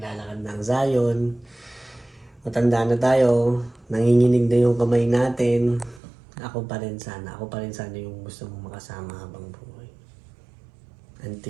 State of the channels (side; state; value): left; drops out; at 6.0 s